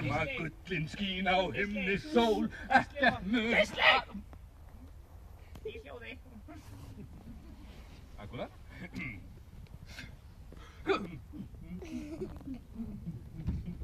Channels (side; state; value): both; identical; correlation 1.00